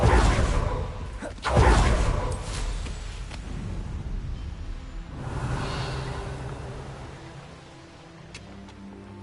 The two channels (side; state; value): both; identical; correlation 1.00